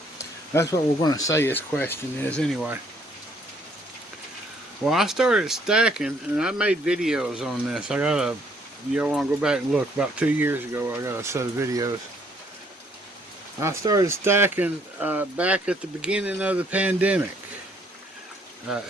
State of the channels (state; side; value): normal; both; correlation 0.66